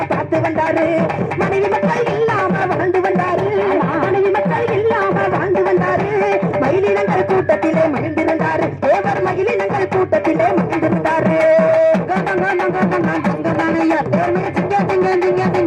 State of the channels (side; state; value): both; identical; correlation 1.00